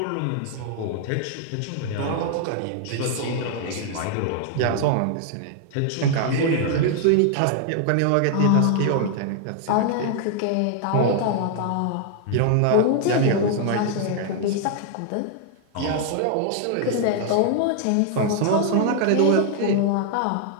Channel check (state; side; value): different; both; correlation 0.00